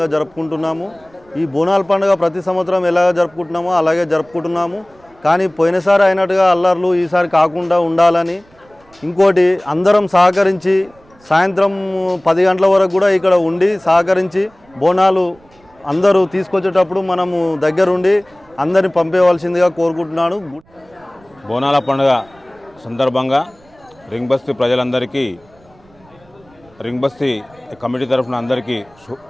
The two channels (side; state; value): right; noise; rumble, 30 dB below the sound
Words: జరుపుకుంటున్నాము. ఈ బోనాల పండుగ ప్రతి సంవత్సరం ఎలాగ జరుపుకుంటున్నామో అలాగే జరుపుకుంటున్నాము. కానీ పోయినసారి అయినట్టుగా అల్లర్లు ఈసారి కాకుండా ఉండాలని, ఇంకోటి అందరం సహకరించి సాయంత్రం 10 గంటల వరకు కూడా ఇక్కడ ఉండి సహకరించి బోనాలు అందరూ తీసుకొచ్చేటప్పుడు మనము దగ్గరుండి అందరిని పంపేయవలసిందిగా కోరుకుంటున్నాను. బోనాల పండుగ సందర్భంగా రింగ్ బస్తీ ప్రజలందరికీ, రింగ్ బస్తీ కమిటీ తరఫున అందరికీ